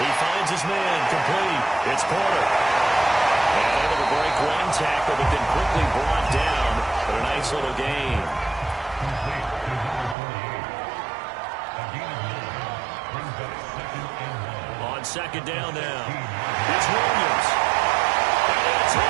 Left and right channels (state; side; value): drops out; left; at 10.2 s